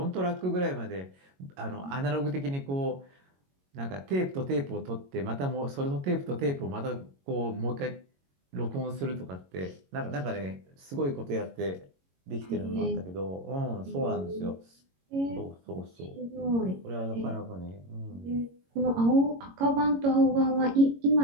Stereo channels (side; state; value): left; late; 22 ms